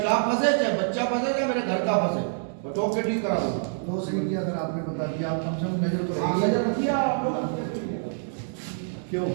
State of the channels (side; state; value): left; silent; digital silence